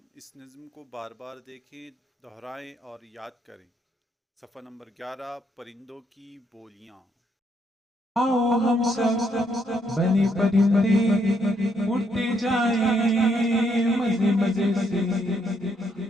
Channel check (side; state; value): both; normal; correlation 0.73